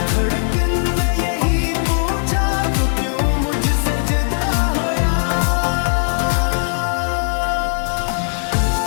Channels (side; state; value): right; silent; 58 dB below the other